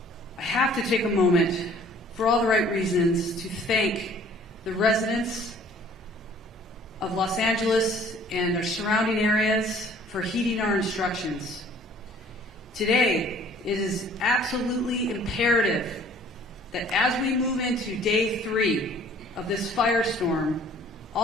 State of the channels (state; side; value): normal; both; correlation 0.54